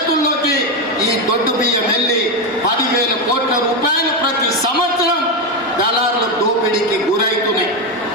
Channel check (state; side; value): normal; both; correlation 0.09